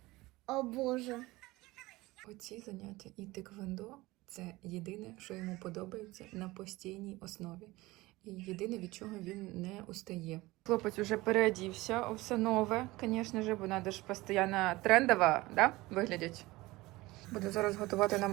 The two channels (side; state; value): left; quieter; 20.1 dB